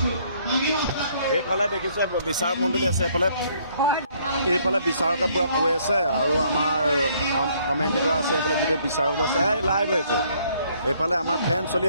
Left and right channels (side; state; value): both; inverted; correlation -0.65